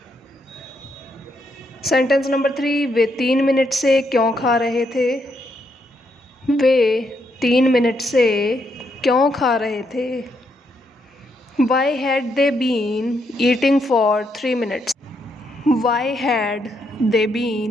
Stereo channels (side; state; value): both; normal; correlation 0.77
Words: Sentence number 3, way 3 minute से क्यों खा रहे थे? वे 3 मिनट से क्यों खा रहे थे? Why had they been eating for 3 minutes? Why had they